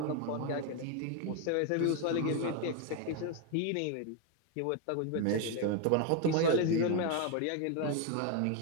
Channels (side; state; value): both; different; correlation 0.01